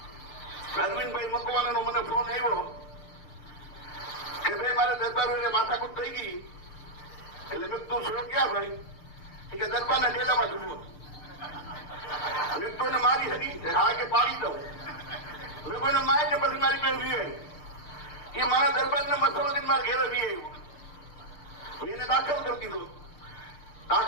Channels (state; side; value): late; right; 6.7 ms